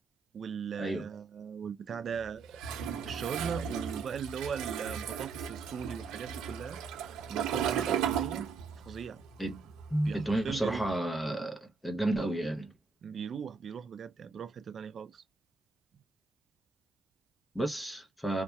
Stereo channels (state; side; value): quieter; left; 4.2 dB